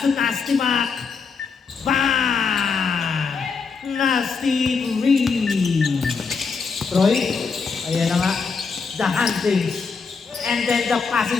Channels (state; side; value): quieter; right; 5.2 dB